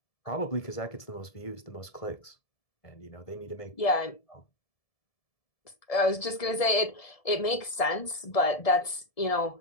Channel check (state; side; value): late; right; 1.7 ms